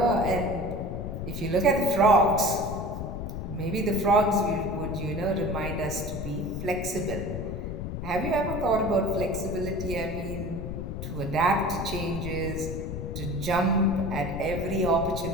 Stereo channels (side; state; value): left; noise; rumble, 5 dB below the sound